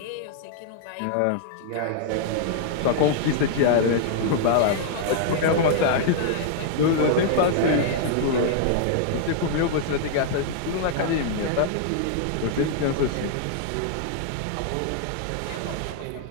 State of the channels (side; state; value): both; different; correlation -0.01